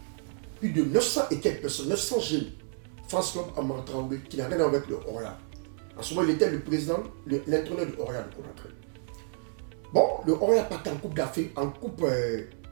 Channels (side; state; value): left; silent; 58 dB below the other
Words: Plus de 900 et quelques personnes, 900 jeunes. France Club Amara Traoré, qui n'a rien à voir avec le Orient. En ce moment, il était le président, l'entraîneur de Orient de Conakry. Bon, le Orient partait en Coupe d'Afrique, en Coupe